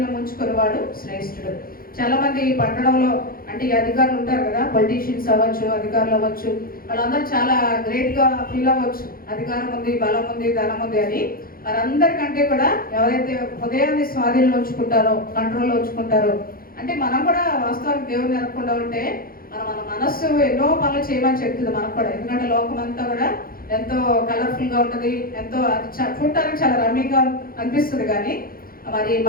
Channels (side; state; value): right; late; 0.42 ms